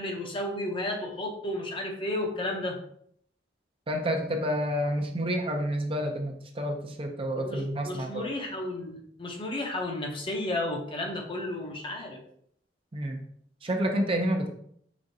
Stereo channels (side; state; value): both; normal; correlation 0.52